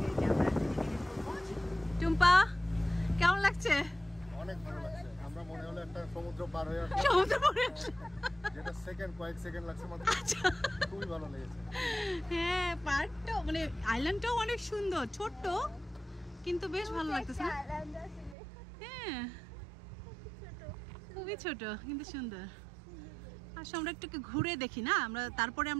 টুম্পা কেমন লাগছে? অনেক ভালো লাগছে, আমরা মনে হলো একটা সমুদ্র পার হয়ে আসলাম। সমুদ্র পার হয়ে আসলাম, যেটা কয়েক সেকেন্ড লাগছে মাত্র। খুবই ভালো লেগেছে। হ্যাঁ, পার্কটা মানে আইল্যান্ডটাও অনেক সুন্দর, ছোট্ট কিন্তু বেশ ভালো লাগতেছে। হ্যাঁ, খুবই ছোট কিন্তু সুন্দর। আসলে আমরা একটু ঘুরে দেখি না, আমরা তারপরে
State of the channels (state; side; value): drops out; left; at 18.4 s